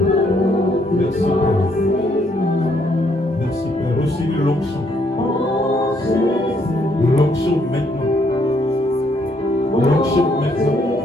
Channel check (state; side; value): normal; both; correlation 0.71